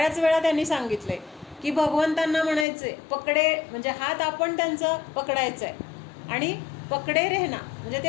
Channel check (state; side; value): drops out; right; at 2.7 s